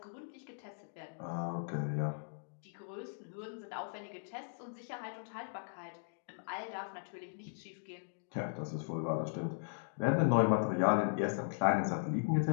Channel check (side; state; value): right; silent; digital silence